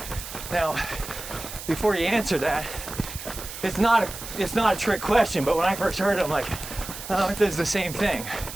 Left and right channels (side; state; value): right; noise; hiss, 10 dB below the sound